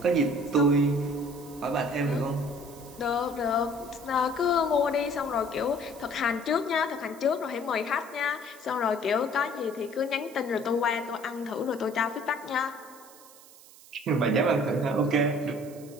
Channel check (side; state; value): right; noise; hiss, 22 dB below the sound